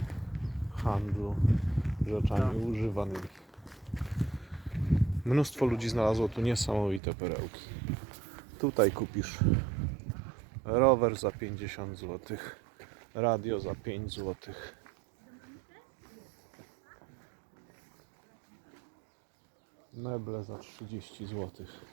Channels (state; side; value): drops out; left; at 7.0 s